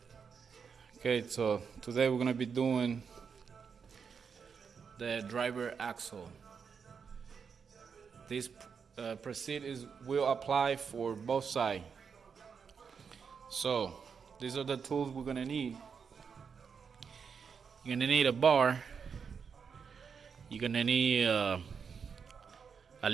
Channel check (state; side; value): quieter; left; 6.2 dB